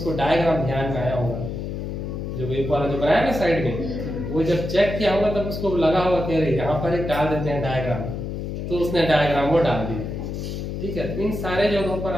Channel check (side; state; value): left; noise; hum, 5 dB below the sound